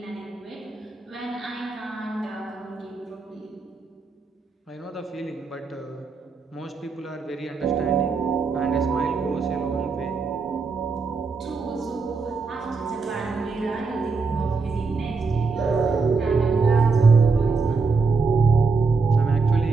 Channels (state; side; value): quieter; left; 4.4 dB